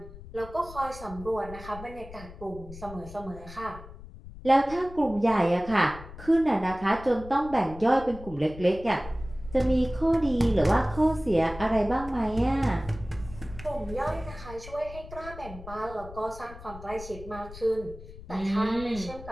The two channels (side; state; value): left; noise; rumble, 15 dB below the sound